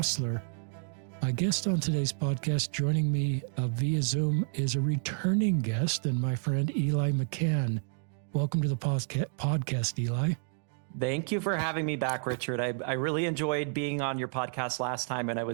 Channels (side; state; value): left; silent; 57 dB below the other